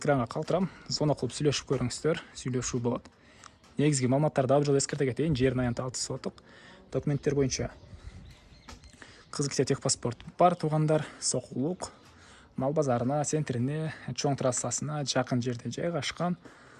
калтырам. Звонок кылып сүйлөшүп көрүңүздөр. Сүйлөшүү болот. Негизги маалыматтарды дагы жолу эскерте кетейин. Жердин аянты 6 соток. Документтер боюнча Кызылкия техпаспорт бар туугандар. Сокулук мал базарына, центрине, чоң трассасына жакын жерде жайгашкан.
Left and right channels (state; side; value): identical; both; correlation 1.00